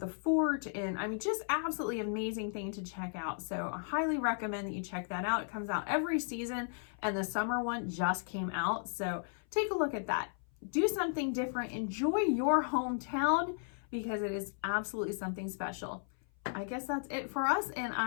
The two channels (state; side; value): silent; right; 54 dB below the other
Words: fort, and I mean, just absolutely amazing thing to check out. So I highly recommend that you check that out. It comes out every season, and the summer one just came out. So take a look at that. Do something different. Enjoy your hometown because it is absolutely something special. I guess that's it for us, and